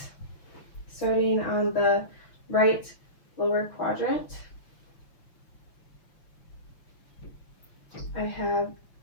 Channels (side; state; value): right; late; 6.4 ms